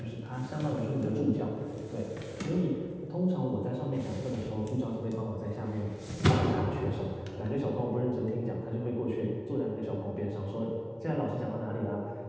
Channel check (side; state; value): both; identical; correlation 1.00